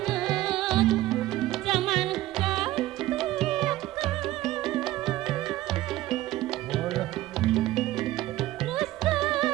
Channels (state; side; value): quieter; left; 15.8 dB